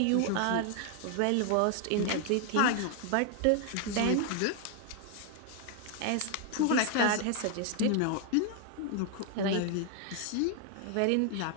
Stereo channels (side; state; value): both; different; correlation 0.00